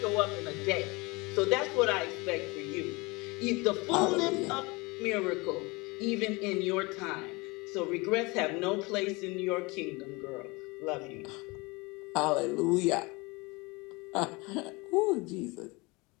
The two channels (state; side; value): quieter; right; 25.4 dB